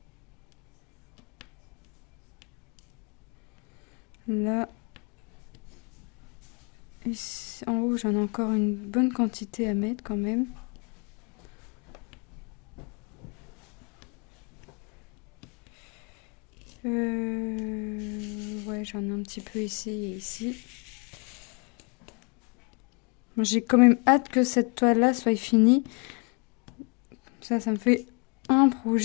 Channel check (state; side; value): quieter; right; 34.3 dB